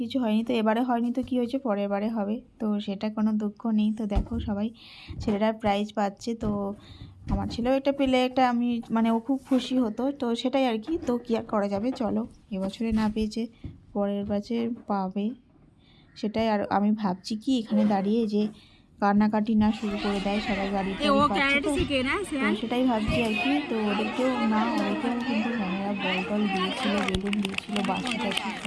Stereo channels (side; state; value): both; identical; correlation 1.00